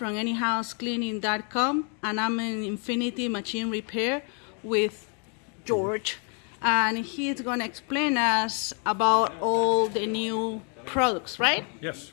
anyhousecleaning.com, and I'm in Infinitive Machine Repair with George, and he's going to explain us about all the new products, right? Yes,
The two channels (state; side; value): quieter; right; 39.8 dB